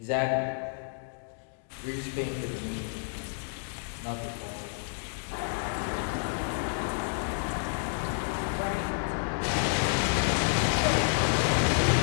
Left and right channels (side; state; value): right; silent; digital silence